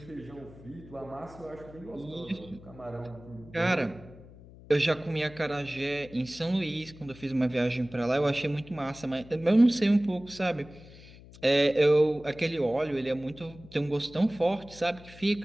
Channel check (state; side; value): noise; left; hum, 20 dB below the sound